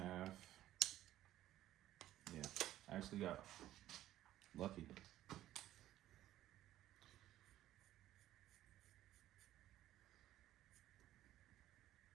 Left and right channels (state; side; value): quieter; left; 13.6 dB